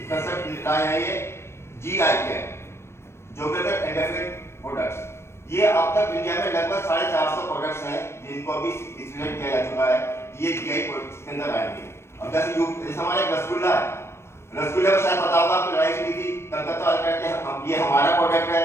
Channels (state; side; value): late; right; 0.12 ms